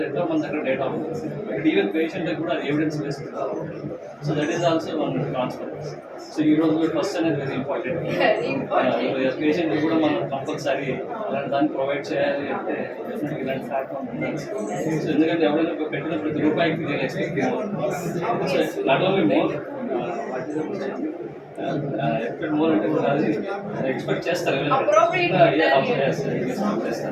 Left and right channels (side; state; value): both; identical; correlation 1.00